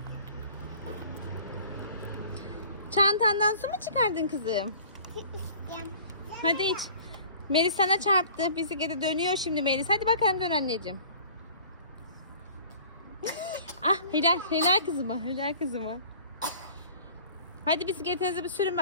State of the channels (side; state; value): both; inverted; correlation -0.47